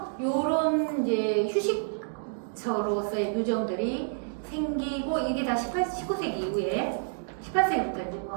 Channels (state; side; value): silent; left; digital silence